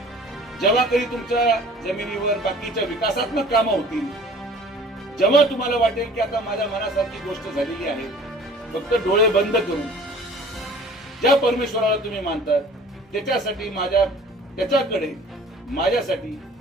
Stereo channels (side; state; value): both; normal; correlation 0.48